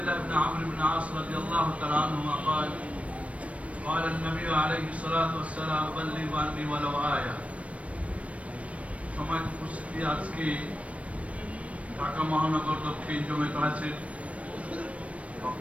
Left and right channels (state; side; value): late; left; 0.064 ms